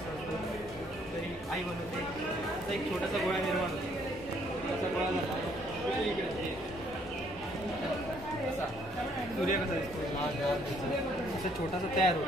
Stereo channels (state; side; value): normal; both; correlation 0.66